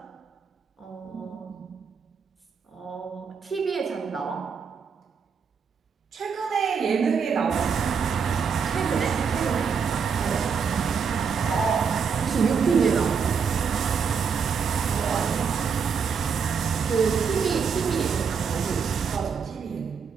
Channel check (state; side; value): quieter; left; 6.2 dB